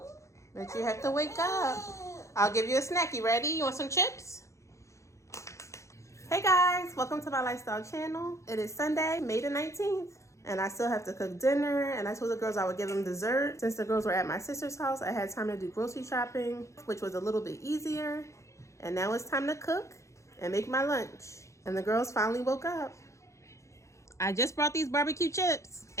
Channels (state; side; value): late; right; 0.14 ms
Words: But you have to wake up. I'll give you a snack. You ready? You want some chips? Hey guys, welcome to my lifestyle channel. It is Sunday, May the 19th. And I still have to cook dinner. And I told the girls I would give them dessert. Since the girls were at my sister's house, I had time to do grocery shopping, which was a little bit easier. And now it's time to cook and make my lunch. And the girls finally woke up. I just brought these barbecue chips.